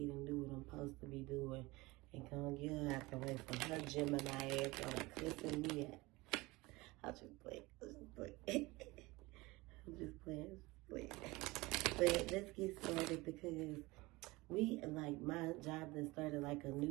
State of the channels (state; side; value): quieter; left; 21.9 dB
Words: do what I'm supposed to be doing and go and get her out the way from her Gemini ass on cussing me out. I'll just play. I'm just playing. But let's get started because my job that started like a